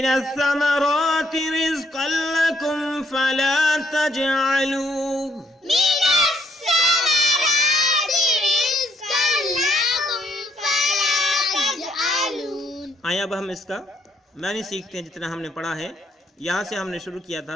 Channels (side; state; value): both; normal; correlation 0.71